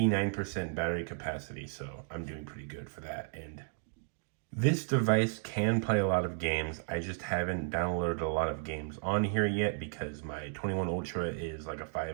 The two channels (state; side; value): silent; left; digital silence